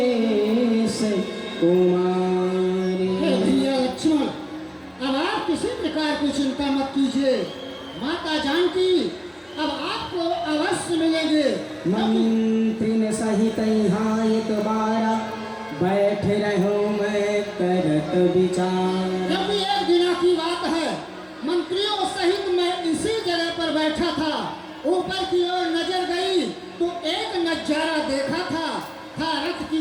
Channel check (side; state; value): both; identical; correlation 1.00